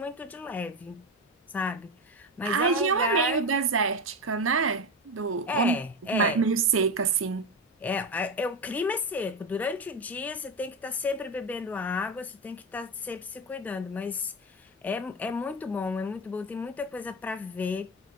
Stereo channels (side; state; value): both; normal; correlation 0.17